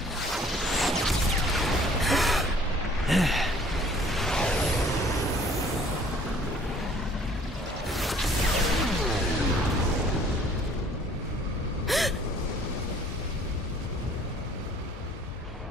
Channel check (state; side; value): normal; both; correlation 0.55